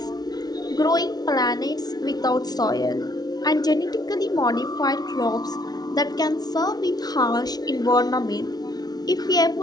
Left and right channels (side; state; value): right; late; 0.19 ms